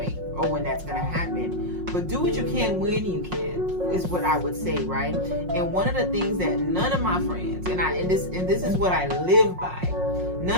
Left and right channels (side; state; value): left; late; 5.5 ms